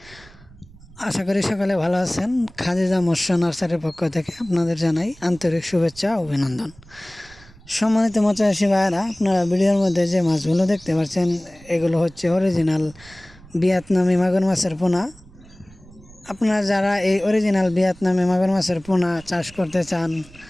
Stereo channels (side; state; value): right; noise; rumble, 23 dB below the sound